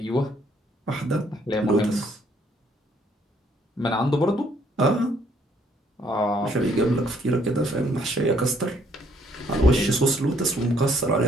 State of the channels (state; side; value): normal; both; correlation 0.66